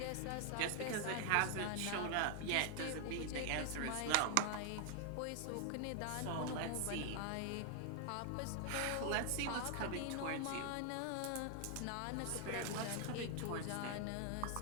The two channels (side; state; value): both; different; correlation 0.00